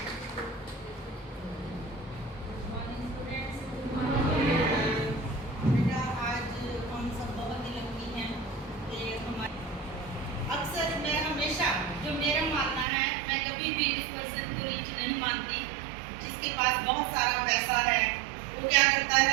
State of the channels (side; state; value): left; drops out; at 12.9 s